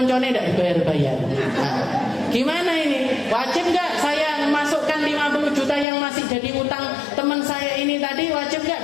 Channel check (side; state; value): right; drops out; at 5.9 s